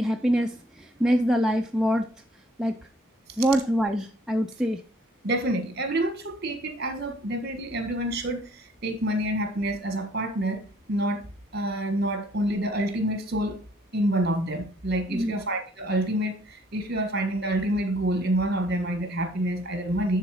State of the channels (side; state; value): both; normal; correlation 0.61